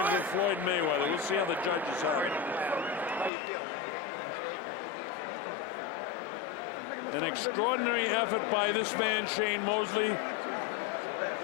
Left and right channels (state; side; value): drops out; right; at 3.3 s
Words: of Floyd Mayweather. We'll see how the judges have it. An extraordinary effort by this man, Shane Mosley.